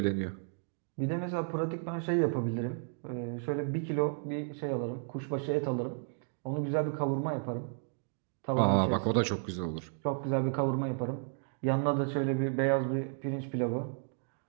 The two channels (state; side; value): silent; left; digital silence